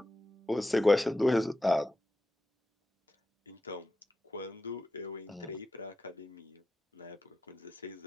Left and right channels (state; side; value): normal; both; correlation 0.91